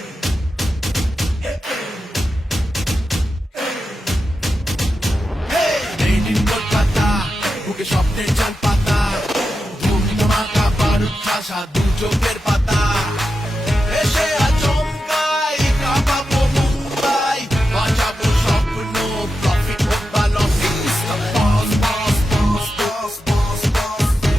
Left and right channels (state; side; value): normal; both; correlation 0.89